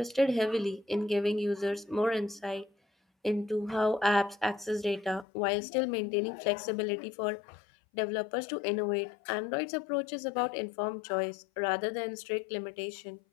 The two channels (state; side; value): drops out; right; at 5.2 s